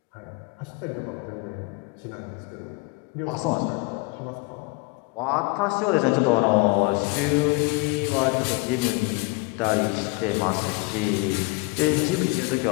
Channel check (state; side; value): quieter; right; 25.4 dB